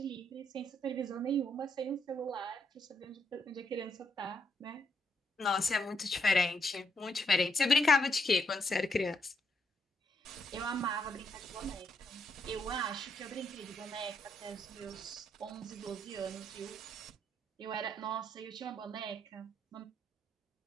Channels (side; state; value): both; normal; correlation 0.76